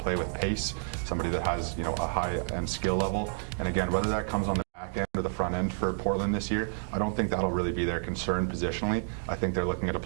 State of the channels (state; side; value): silent; left; digital silence